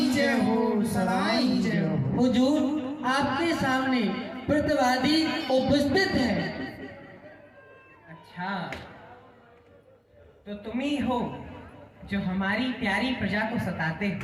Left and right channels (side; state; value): both; identical; correlation 1.00